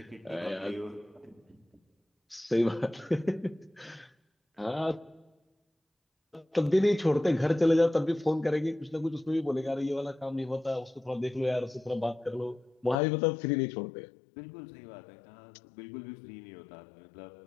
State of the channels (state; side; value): drops out; right; at 13.0 s